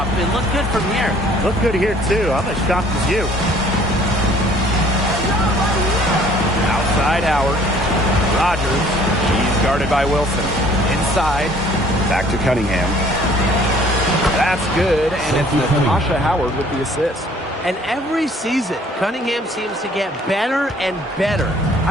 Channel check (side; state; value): both; normal; correlation 0.56